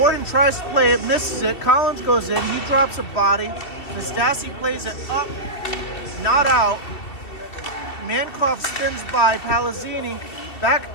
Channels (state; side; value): late; right; 2.7 ms